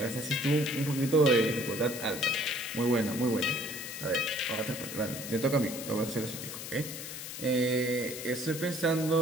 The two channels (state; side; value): noise; left; hiss, 8 dB below the sound